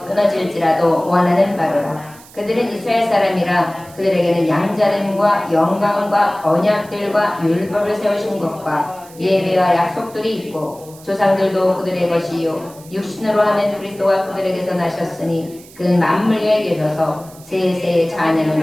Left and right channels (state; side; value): noise; right; hiss, 22 dB below the sound